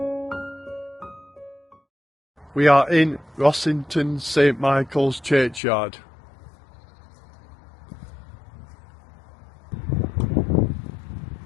We are in Rossington St Michael's churchyard.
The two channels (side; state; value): right; drops out; at 5.6 s